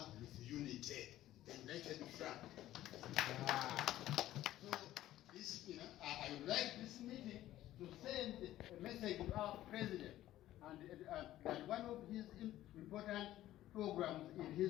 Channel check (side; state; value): right; quieter; 14.1 dB